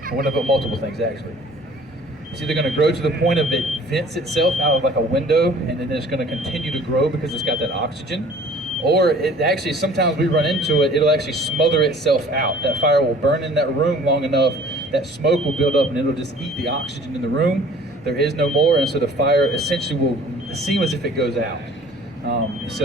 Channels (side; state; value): both; normal; correlation 0.51